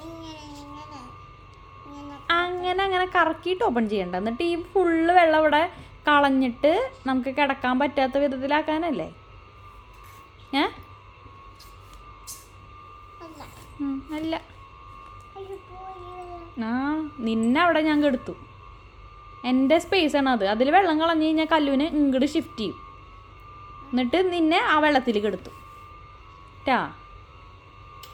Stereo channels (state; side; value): identical; both; correlation 1.00